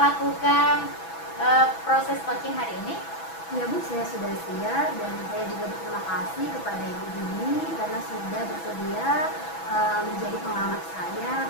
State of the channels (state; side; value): late; right; 6.1 ms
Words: proses coaching hari ini? Ya Bu, saya sudah siap dan saya juga berterima kasih kepada Ibu Dini karena sudah bersedia menjadi pengamat saya